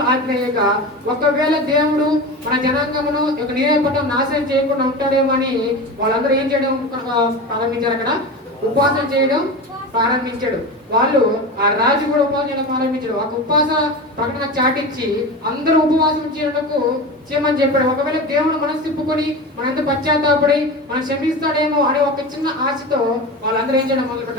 ఆజ్ఞేయగా ఒకవేళ దేవుడు మన జనాంగమును నినెవె పట్టణం నాశనం చేయకుండా ఉంటాడేమో అని వాళ్ళందరూ ఏం చేయడం ప్రారంభించారు, అక్కడ ఉపవాసం చేయడం ప్రారంభించాడు. వాళ్ళు ఆ రాజు కూడా ఉపవాసం చేయడం ప్రారంభించాడు. ఒక ఉపవాస ప్రకటన చాటించి అందరూ ఉపవాసం చేయమని చెప్పాడు. ఒకవేళ దేవుడు మనసు తిప్పుకొని మన ఎంత పశ్చాత్తాపడి మనం క్షమిస్తాడేమో అనే ఒక చిన్న ఆశతో వాళ్ళందరూ ఏం చేయడం మొదలు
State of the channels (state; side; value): normal; both; correlation 0.27